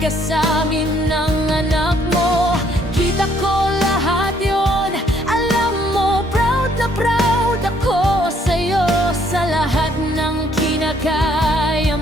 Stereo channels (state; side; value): normal; both; correlation 0.66